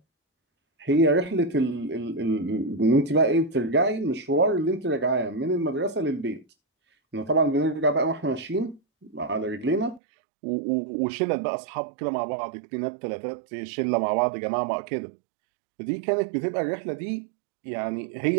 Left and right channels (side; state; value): left; drops out; at 10.0 s